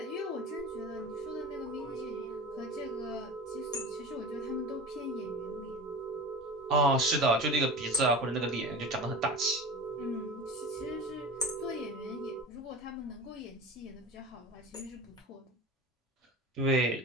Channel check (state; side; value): normal; both; correlation 0.33